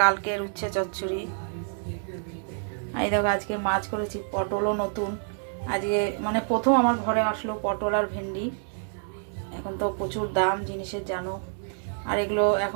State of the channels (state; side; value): silent; left; digital silence